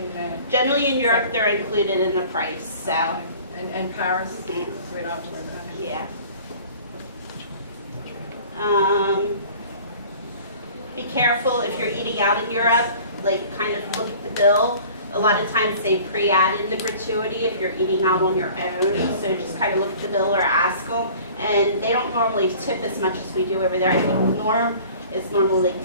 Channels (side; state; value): both; inverted; correlation -0.46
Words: Generally in Europe, they're included in the price, so and Paris? Mhm. So we don't have to worry about it. yeah. Be careful if you're eating out in Europe, like kind of look at the bill. A lot of times they pre-add in the gratuity if you're eating out on your own, so just kind of look at the bill or ask them. And they don't normally tip as much as we do over there. I think the norm is normally